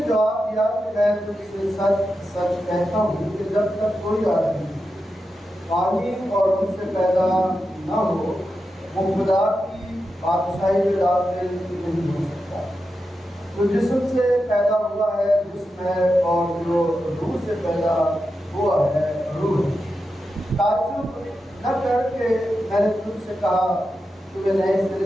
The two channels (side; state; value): both; normal; correlation 0.89